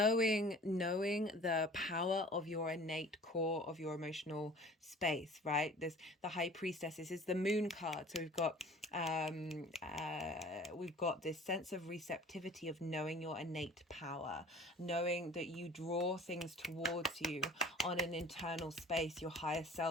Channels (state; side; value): normal; both; correlation 0.46